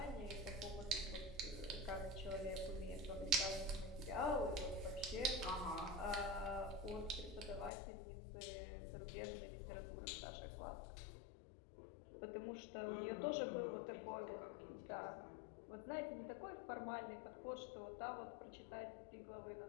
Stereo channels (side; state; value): right; drops out; at 7.7 s